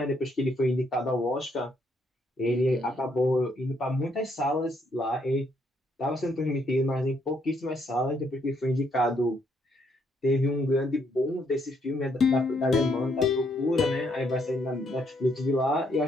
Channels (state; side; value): normal; both; correlation 0.72